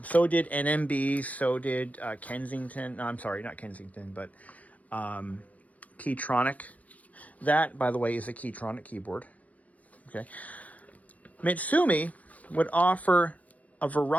so did NMB, so did Kensington. No, I'm sorry, not Kensington, but Keytronic. That, by the way, is a Keytronic keyboard. Okay. Mitsumi would offer a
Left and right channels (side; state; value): right; late; 0.072 ms